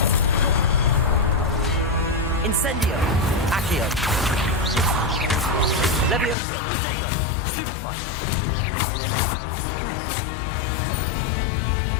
Incendio. Accio. Levioso. Protego. Stupefy.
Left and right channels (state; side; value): drops out; right; at 6.4 s